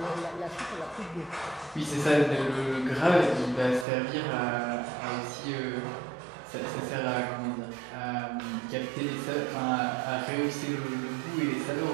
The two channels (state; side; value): drops out; left; at 3.9 s